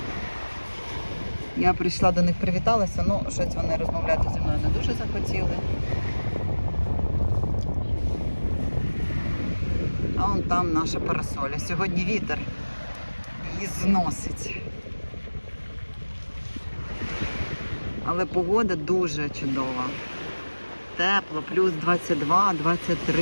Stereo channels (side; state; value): both; inverted; correlation -1.00